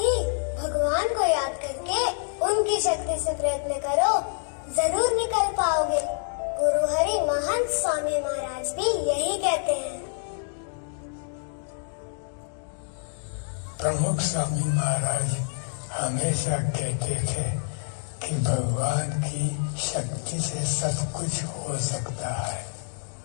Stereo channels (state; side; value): silent; right; digital silence